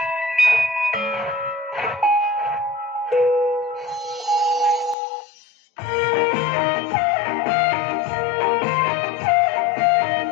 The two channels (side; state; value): right; drops out; at 5.0 s